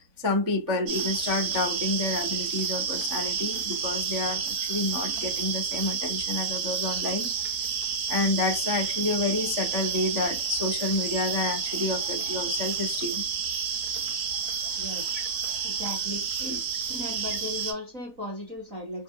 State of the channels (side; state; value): left; late; 4.0 ms